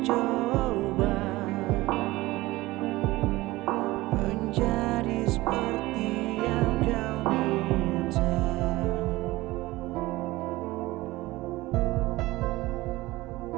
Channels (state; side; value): quieter; left; 19.2 dB